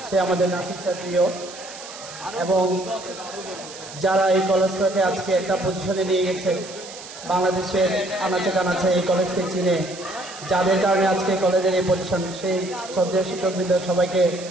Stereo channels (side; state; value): right; noise; hiss, 14 dB below the sound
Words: সে আমাদের নাসির স্যার প্রিয়, এবং যারা এই কলেজটাকে আজকে একটা পজিশনে নিয়ে গেছে, বাংলাদেশের আনাচে কানাচে এই কলেজকে চিনে যাদের কারণে আজকে কলেজের এই পজিশন, সেই শ্রদ্ধেয় শিক্ষকবৃন্দ সবাইকে